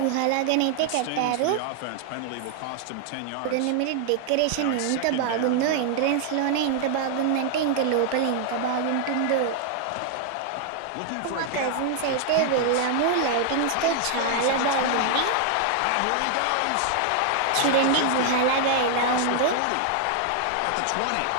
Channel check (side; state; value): both; different; correlation 0.00